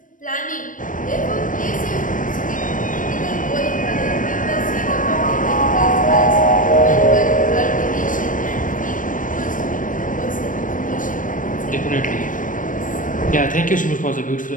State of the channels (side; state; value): right; late; 0.38 ms